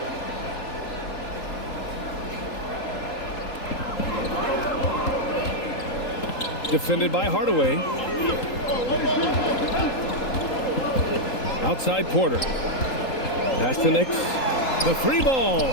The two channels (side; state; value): right; late; 3.8 ms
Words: Defended by Hardaway. Outside Porter. Pass to Nix. The 3 ball.